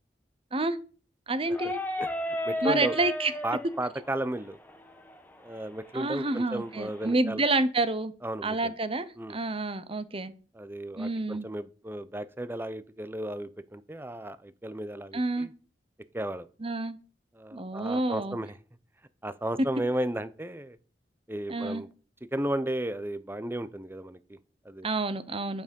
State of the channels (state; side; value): normal; both; correlation 0.56